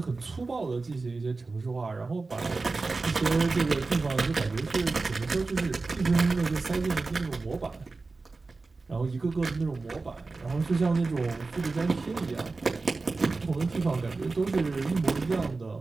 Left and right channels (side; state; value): left; quieter; 3.8 dB